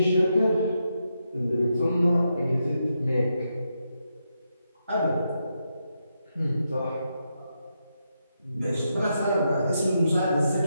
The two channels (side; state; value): both; inverted; correlation -0.84